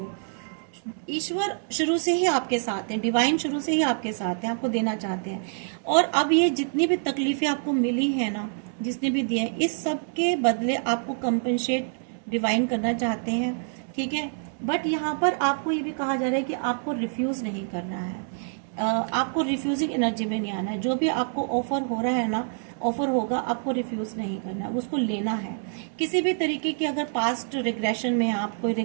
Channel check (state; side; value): silent; left; digital silence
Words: ईश्वर शुरू से ही आपके साथ है, डिवाइन शुरू से ही आपके साथ है, आपको देना चाहते हैं। और अब ये जितनी भी तकलीफें आपको मिली है ना, जिसने भी दिए हैं, इस सब के बदले आपको कंपनसेट डिवाइन करना चाहते हैं, ठीक है। बट यहाँ पर आपको ये भी कहा जा रहा है कि आपको रिफ्यूज नहीं करना है, आपको रिफ्यूजिंग एनर्जी में नहीं आना है। जो भी आपको ऑफर हो रहा है ना, ऑफर होगा, आपको रिफ्यूज नहीं करना है, उसको लेना है। किसी भी तरीके की अगर पास्ट रिग्रेशन में आप, कोई